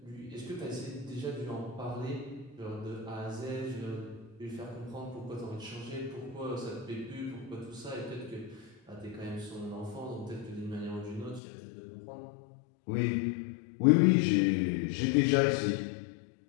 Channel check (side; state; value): right; drops out; at 11.4 s